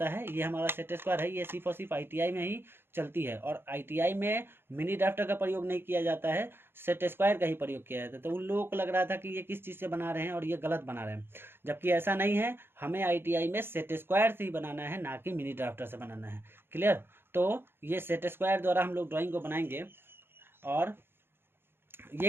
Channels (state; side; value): late; left; 0.11 ms